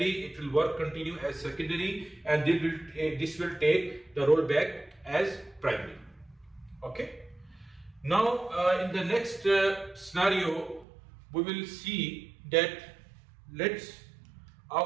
It will continue as secondary, and this will take the role back as primary. Okay. Now in the next scenario, we will see that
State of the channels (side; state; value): left; drops out; at 10.9 s